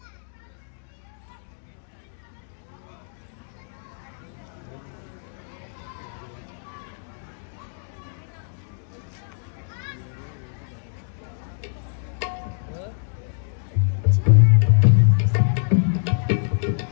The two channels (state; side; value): silent; right; digital silence